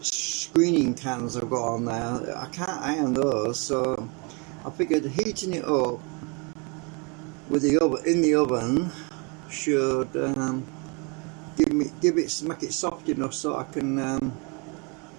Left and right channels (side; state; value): left; quieter; 31.9 dB